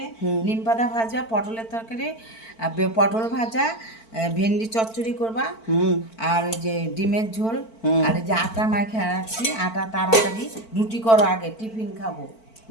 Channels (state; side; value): late; right; 4.5 ms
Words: নিম পাতা ভাজা, পটলের তরকারি, পটল ভাজা, ভেন্ডি চচ্চড়ি করবা, আর ওই যে ডিমের ঝোল, আর এই যে আটা মাখা রাখছি, আটা তাড়াতাড়ি রুটি করো, আগে টিফিন খাবো।